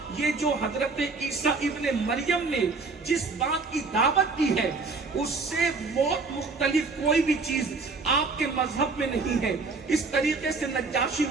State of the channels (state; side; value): quieter; left; 4.1 dB